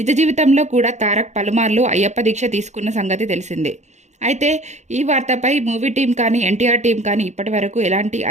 జీవితంలో కూడా తారక్ పలుమార్లు అయ్యప్ప దీక్ష తీసుకున్న సంగతి తెలిసిందే. అయితే ఈ వార్తపై మూవీ టీం కానీ ఎన్టీఆర్ టీం కానీ ఇప్పటి వరకు ఎలాంటి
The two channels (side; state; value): left; late; 0.33 ms